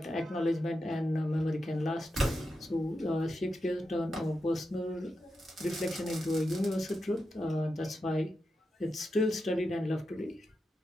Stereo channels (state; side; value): normal; both; correlation 0.88